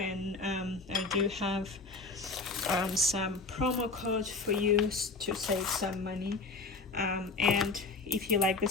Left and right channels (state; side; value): quieter; right; 3.7 dB